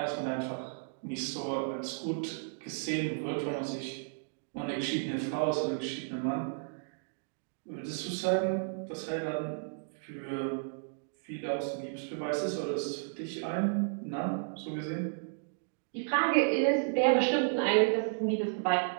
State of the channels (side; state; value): left; silent; digital silence